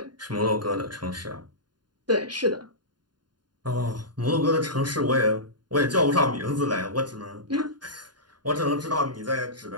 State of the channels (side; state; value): left; late; 0.70 ms